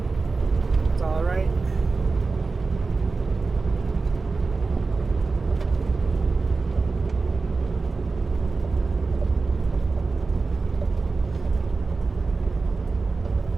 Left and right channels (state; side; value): quieter; left; 4.0 dB